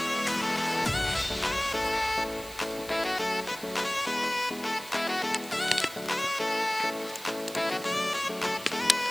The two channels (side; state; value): right; noise; hiss, 16 dB below the sound